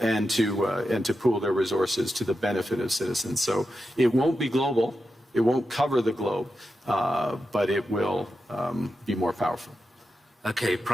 to pool their resources to the benefit of citizens. So it won't be global, it won't cover the globe, but it will be more powerful. Okay,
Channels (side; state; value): both; normal; correlation 0.89